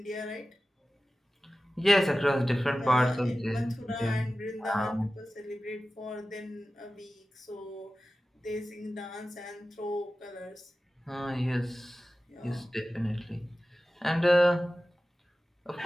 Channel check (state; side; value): normal; both; correlation 0.95